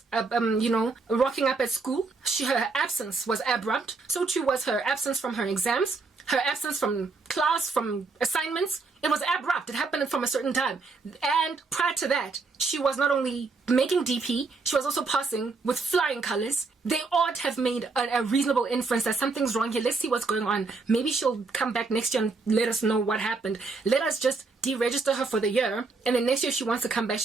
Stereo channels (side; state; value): left; quieter; 4.1 dB